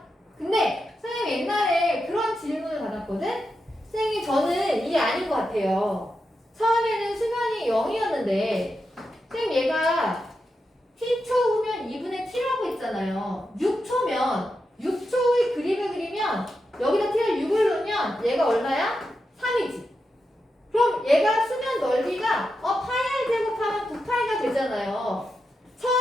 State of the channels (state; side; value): normal; both; correlation 0.88